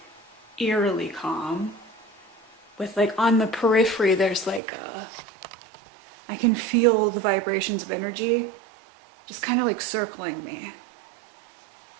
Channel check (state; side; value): drops out; left; at 4.6 s